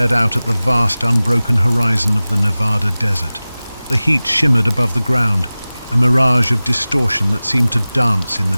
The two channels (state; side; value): inverted; both; correlation -0.98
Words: out at the vast, unbroken horizon of the Nevada desert. The heat shimmered above the ground, a mirage of distortion that seemed to dance in the